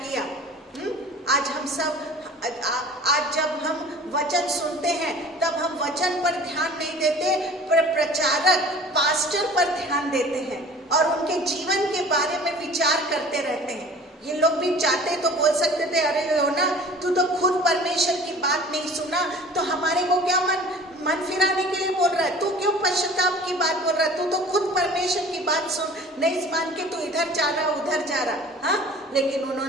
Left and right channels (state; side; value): normal; both; correlation 0.44